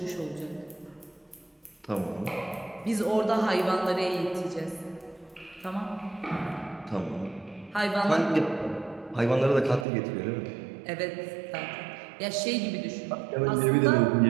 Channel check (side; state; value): left; drops out; at 9.9 s